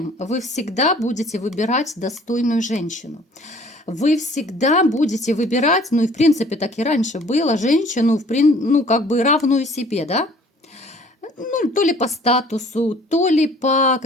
Вы всегда будете выбирать достойную женщину. Вы всегда будете выбирать, ну и в принципе так и раньше было, женщину, ну как бы равную себе, да? Ну, то ли по статусу, то ли по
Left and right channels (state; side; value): normal; both; correlation 0.53